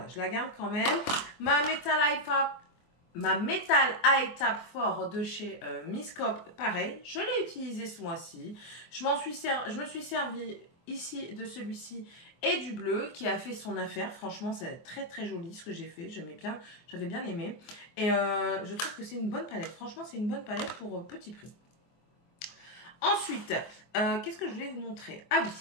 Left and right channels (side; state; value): right; late; 24 ms